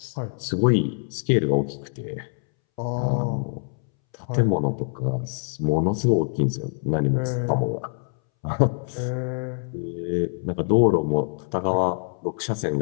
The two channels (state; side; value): silent; right; 62 dB below the other